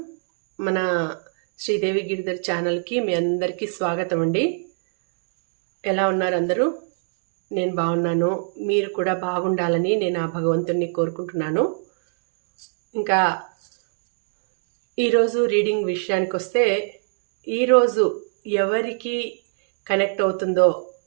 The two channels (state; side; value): silent; left; digital silence